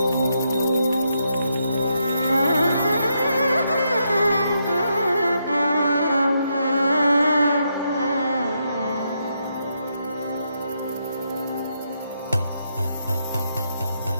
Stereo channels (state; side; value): inverted; both; correlation -0.80